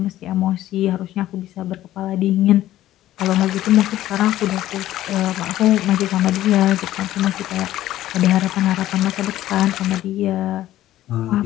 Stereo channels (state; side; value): quieter; right; 14.0 dB